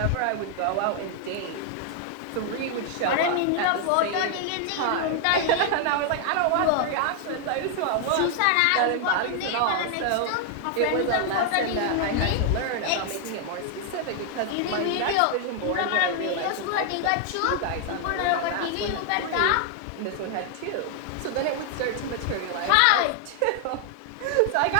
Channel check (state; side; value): different; both; correlation 0.00